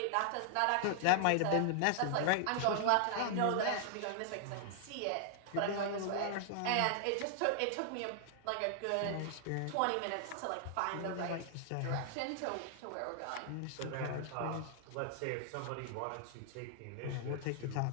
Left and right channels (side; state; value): both; different; correlation 0.00